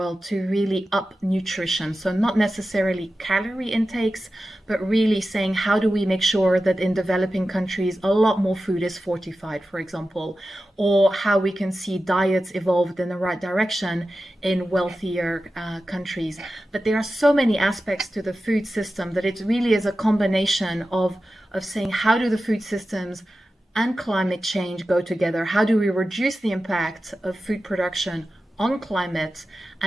to really up nutrition. So not necessarily calorie intakes, but really saying, how do we make sure that in developing countries, a lot more food is fortified, for example, or how we can see diets evolved in the right direction in wealthier countries. But there are so many aspects to the food system that it really is a combination of saying, how do the food systems and climate change go together? How do we reduce the impact of food production on climate?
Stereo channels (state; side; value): normal; both; correlation 0.93